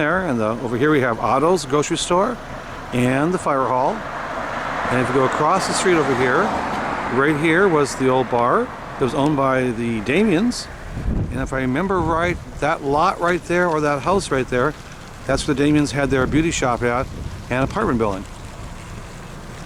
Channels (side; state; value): both; identical; correlation 1.00